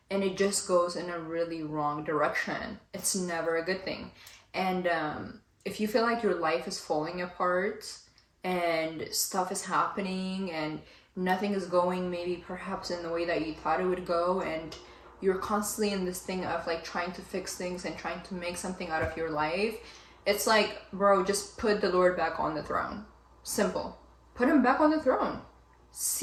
and it just goes in a really wrong direction. It's never a good thing. And if you feel like your life is falling apart and stuff is happening and nothing is going maybe perhaps in the way that you thought it would go, and you're constantly in this thing of like trying to fix things and trying to make something out of your life, it's like, bro, just put the Lord back on the throne. Simple. Put him back on the throne.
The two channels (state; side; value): identical; both; correlation 1.00